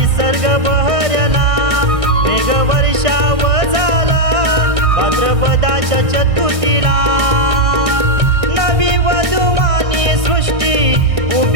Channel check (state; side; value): late; left; 1.6 ms